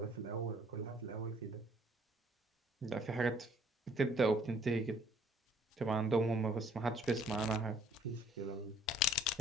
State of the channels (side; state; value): both; normal; correlation 0.60